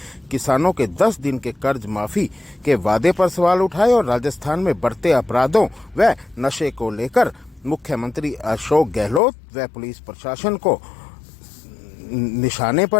किसानों के 10 दिन के कर्ज माफी के वादे पर सवाल उठाए और राजस्थान में बढ़ते अपराधों व नशे को लेकर मुख्यमंत्री अशोक गहलोत व पुलिस प्रशासन को निशाने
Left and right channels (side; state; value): right; drops out; at 9.2 s